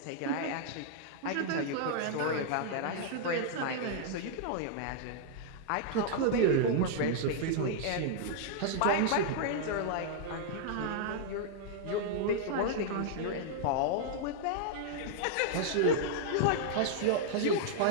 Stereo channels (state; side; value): different; both; correlation -0.01